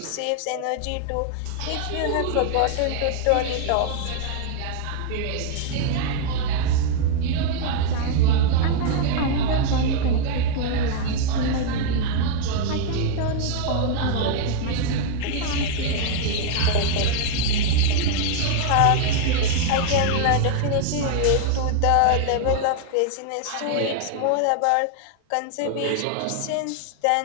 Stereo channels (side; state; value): both; different; correlation 0.00